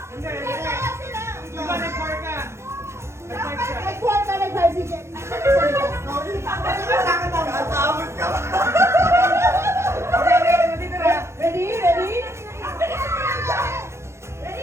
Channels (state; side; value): late; left; 0.13 ms